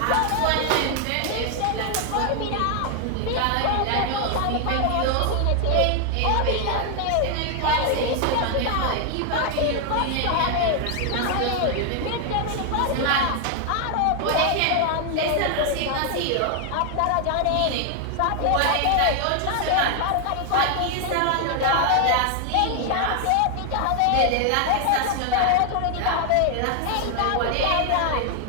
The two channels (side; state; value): both; different; correlation 0.00